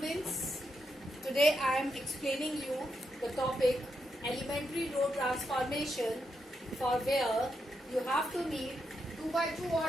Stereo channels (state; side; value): normal; both; correlation 0.83